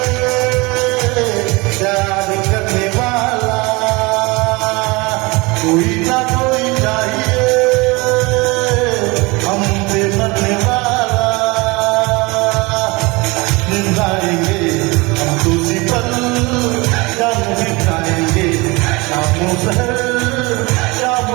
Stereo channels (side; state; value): left; quieter; 24.9 dB